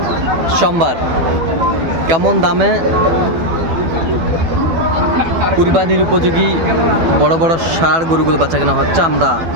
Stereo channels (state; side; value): late; left; 12 ms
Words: সোমবার। কেমন দামে কুরবানির উপযোগী বড় বড় ষাঁড় গরুগুলো বাচ্চা কেনা হচ্ছে, আমরা